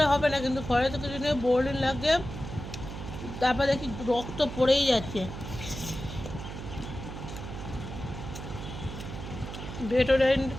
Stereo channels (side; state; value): right; noise; hum, 9 dB below the sound